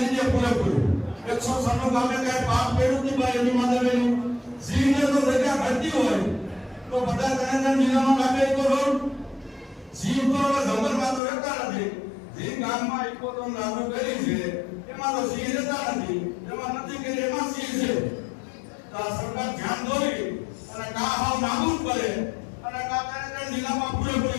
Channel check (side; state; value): right; drops out; at 11.2 s